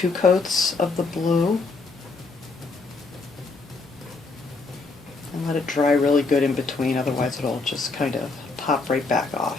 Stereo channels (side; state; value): right; quieter; 3.9 dB